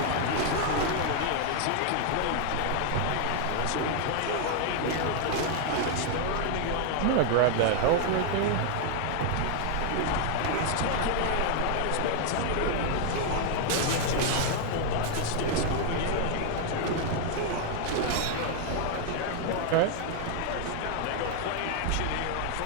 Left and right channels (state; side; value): different; both; correlation 0.00